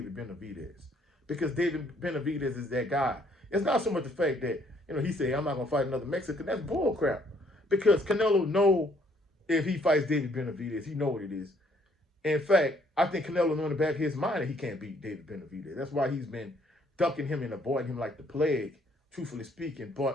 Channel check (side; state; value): both; normal; correlation 0.65